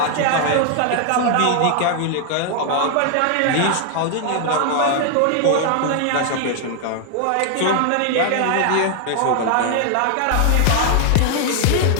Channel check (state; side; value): different; both; correlation 0.00